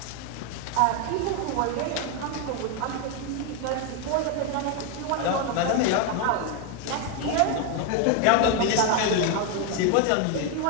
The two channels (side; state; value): both; different; correlation 0.01